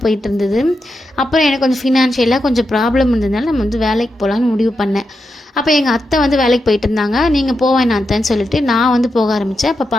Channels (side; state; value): both; normal; correlation 0.87